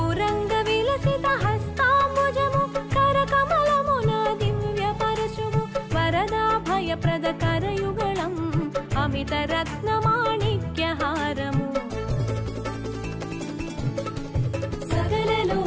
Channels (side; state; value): both; identical; correlation 1.00